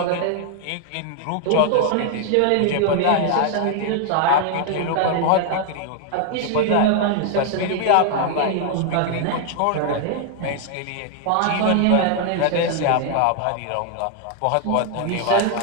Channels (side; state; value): both; different; correlation 0.00